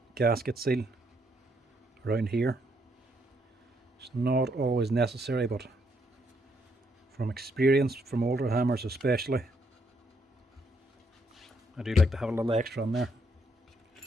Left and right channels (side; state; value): both; normal; correlation 0.74